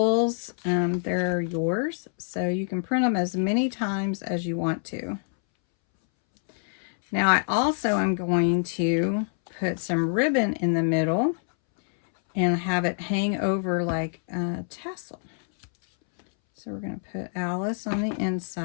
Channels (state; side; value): silent; right; 61 dB below the other